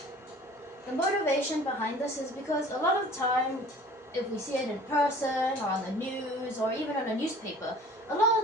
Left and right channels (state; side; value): normal; both; correlation 0.47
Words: The motivation behind this is because a lot of the time, if we see it in person or on the news or even on a newspaper, a lot